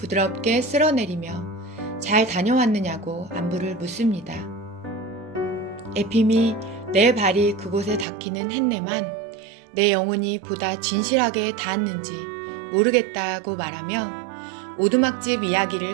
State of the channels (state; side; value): drops out; left; at 8.1 s